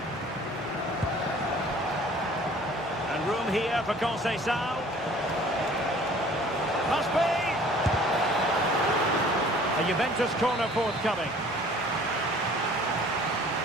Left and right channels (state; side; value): normal; both; correlation 0.51